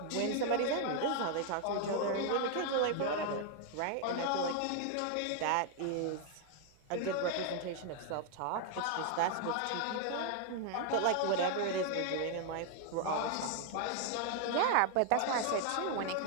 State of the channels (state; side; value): different; both; correlation 0.00